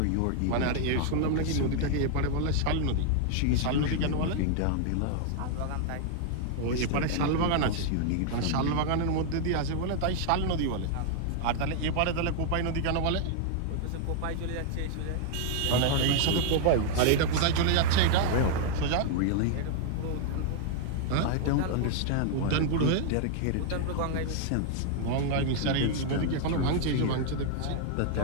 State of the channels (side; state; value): both; different; correlation 0.00